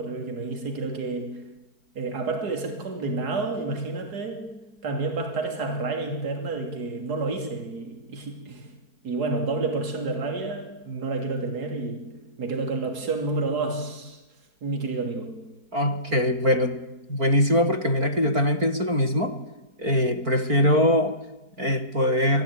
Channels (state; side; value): late; left; 4.4 ms